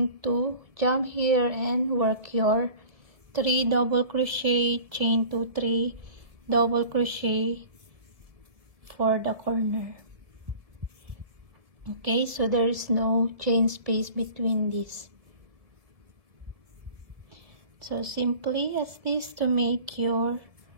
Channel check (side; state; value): left; late; 1.7 ms